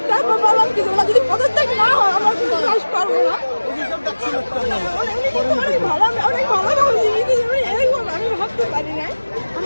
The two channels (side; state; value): both; inverted; correlation -1.00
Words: তারপর বললাম কি তোমরা যদি পদত্যাগ না হয় আমার কোনো ক্লাস পারবো না। অনেক ভালো, আমি অনেক ভালো আমি ভাবতে পারি না